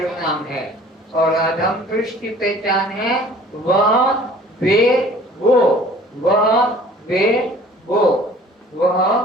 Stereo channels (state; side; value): normal; both; correlation 0.50